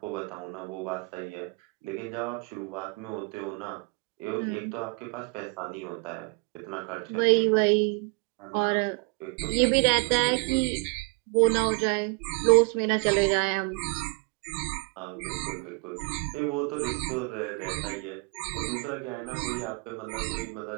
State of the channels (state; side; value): quieter; left; 31.5 dB